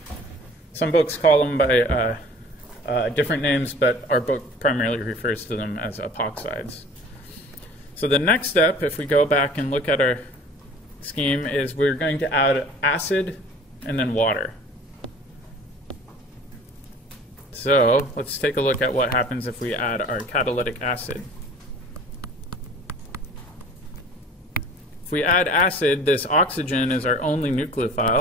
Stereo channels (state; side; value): normal; both; correlation 0.47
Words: Some books call them by different names, but our book primarily refers to them as epoxides. So the next step, if we go back and look at our scheme, is we're going to add acid and then water. So let's take a look at what happens if we add our catalytic acid. If we add acid, this oxygen is our only